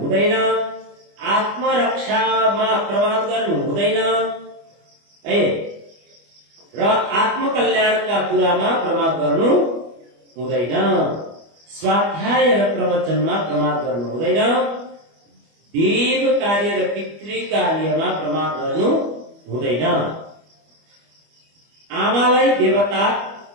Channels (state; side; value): late; left; 25 ms